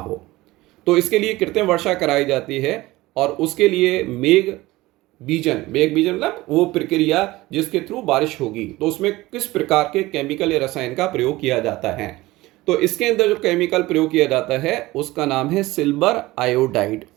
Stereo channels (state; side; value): quieter; left; 19.0 dB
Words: तो इसके लिए कृत्रिम वर्षा कराई जाती है और उसके लिए मेघ बीजन मतलब वो प्रक्रिया जिसके थ्रू बारिश होगी, तो उसमें किस प्रकार के केमिकल या रसायन का प्रयोग किया जाता है। तो इसके अंदर जो केमिकल प्रयोग किया जाता है उसका नाम है सिल्वर आयोडाइड।